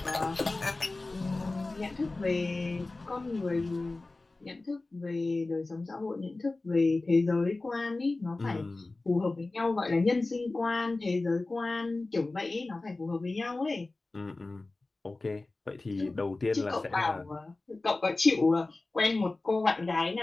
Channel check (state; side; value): quieter; right; 3.2 dB